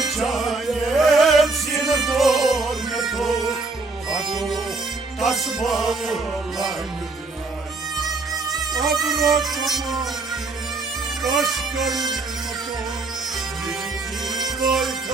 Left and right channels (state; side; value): quieter; left; 3.6 dB